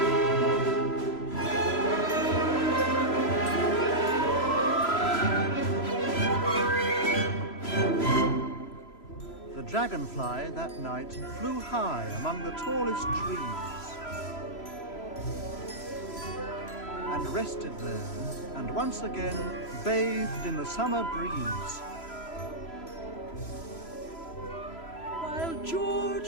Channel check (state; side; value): late; right; 3.0 ms